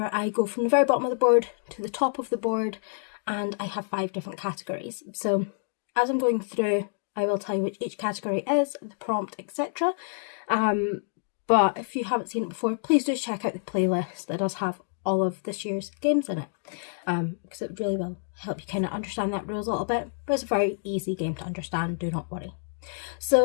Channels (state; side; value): silent; right; digital silence